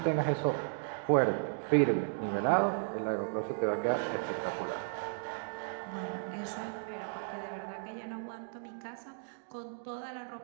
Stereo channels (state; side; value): silent; left; digital silence